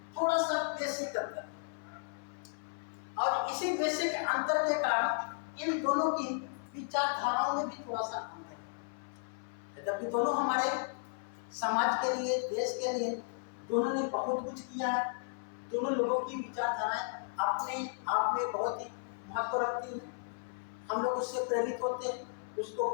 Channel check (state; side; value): silent; right; 55 dB below the other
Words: थोड़ा सा बेसिक अंतर, और इसी बेसिक अंतर के कारण इन दोनों की विचारधाराओं में भी थोड़ा सा अंतर है। जबकि दोनों हमारे समाज के लिए, देश के लिए दोनों ने बहुत कुछ किया है। दोनों लोगों की विचारधाराएं अपने आप में बहुत ही महत्व रखती हैं। हम लोग उससे प्रेरित होते हैं, उसको